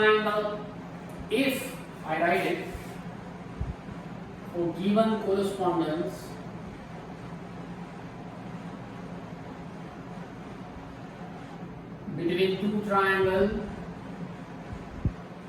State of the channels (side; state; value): both; identical; correlation 1.00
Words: If I write it, for given correspondence between two triangles,